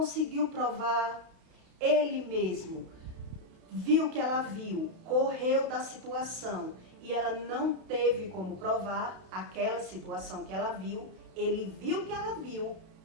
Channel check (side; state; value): left; late; 31 ms